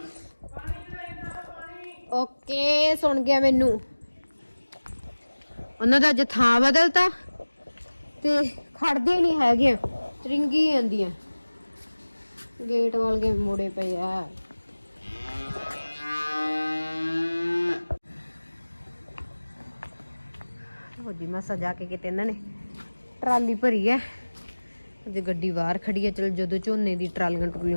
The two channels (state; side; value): inverted; both; correlation -1.00